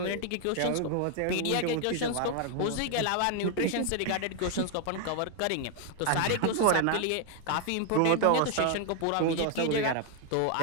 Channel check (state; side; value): different; both; correlation 0.00